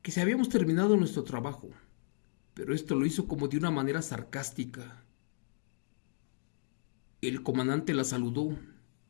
que si habíamos terminado nuestro trabajo, pero esto lo hizo como de una manera sarcástica. El comandante la saludó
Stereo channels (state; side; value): silent; right; digital silence